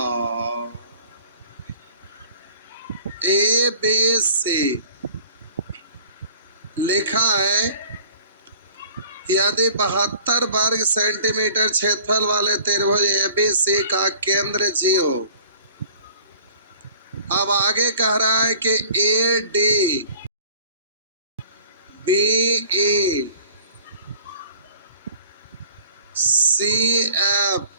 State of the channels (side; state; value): both; inverted; correlation -0.49